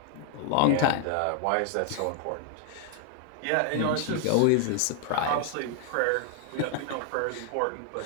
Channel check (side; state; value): both; different; correlation 0.00